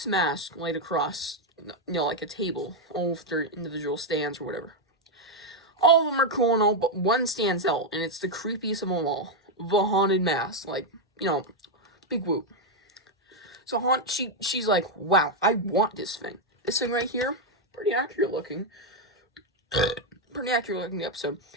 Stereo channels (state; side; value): normal; both; correlation 0.02